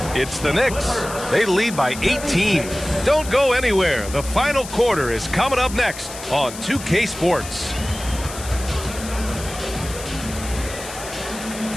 It's the Knicks. They lead by 18. Don't go anywhere. The final quarter is coming up next on 2K Sports.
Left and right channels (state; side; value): noise; left; hiss, 12 dB below the sound